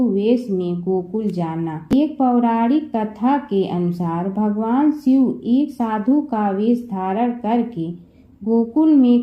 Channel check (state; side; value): identical; both; correlation 1.00